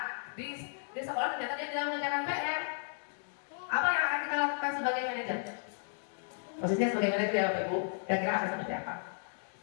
di sekolah ternyata dia tidak mengerjakan PR, apa yang akan kita lakukan sebagai manajer? Posisinya sebagai manajer ya Bapak Ibu, kira-kira akan seperti apa?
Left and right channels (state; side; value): silent; right; digital silence